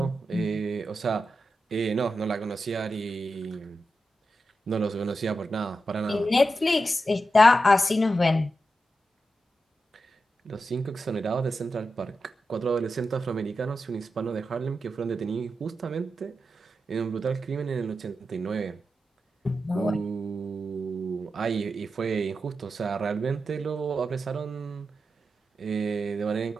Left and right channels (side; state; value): both; normal; correlation 0.89